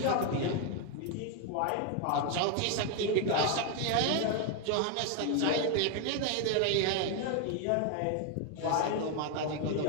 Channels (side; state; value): both; different; correlation 0.01